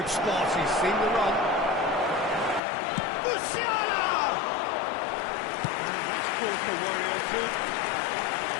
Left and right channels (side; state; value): right; drops out; at 2.6 s